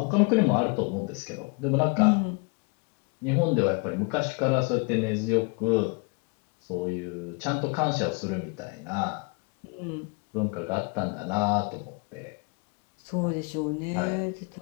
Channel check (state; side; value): quieter; right; 33.4 dB